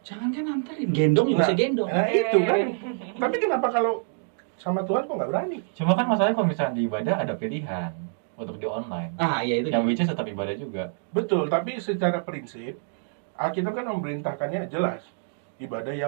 Jangan kan anterin, gendong juga bisa gendong. Nah itu kan. Tapi kenapa kalau sama Tuhan kok nggak berani? Cuma kan masalahnya kalau misalnya di ibadah ada pilihan untuk di online. Ah, iya itu. Yang which is tetap ibadah juga. Betul, tapi secara prinsip, Alkitab kan memerintahkannya jelas. Ibadah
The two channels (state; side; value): silent; left; digital silence